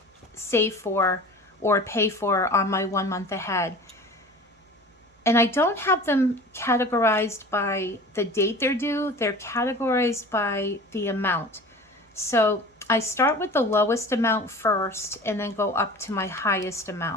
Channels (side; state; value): both; normal; correlation 0.39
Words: save for or pay for on my 1 month ahead. And I don't have them categorized by the date they're due. They're categorized by the amount. So I start with the lowest amount first and then go up to my highest